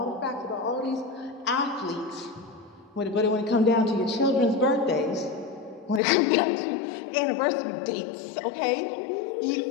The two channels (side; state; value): right; drops out; at 6.0 s